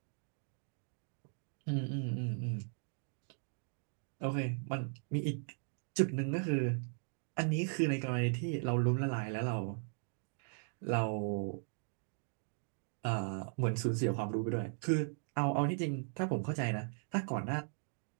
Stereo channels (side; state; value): left; silent; 52 dB below the other